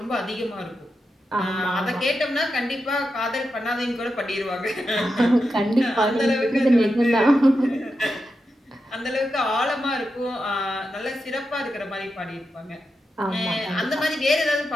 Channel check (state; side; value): normal; both; correlation 0.88